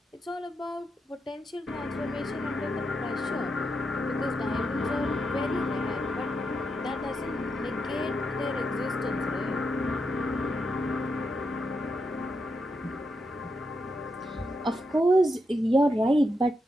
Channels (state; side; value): normal; both; correlation 0.83